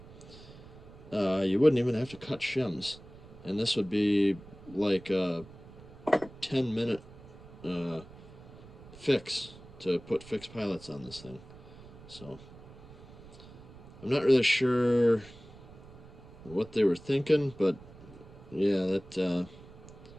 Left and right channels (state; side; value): noise; right; rumble, 19 dB below the sound